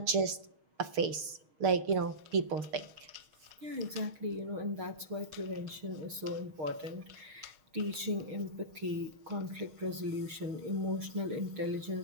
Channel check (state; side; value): late; left; 6.4 ms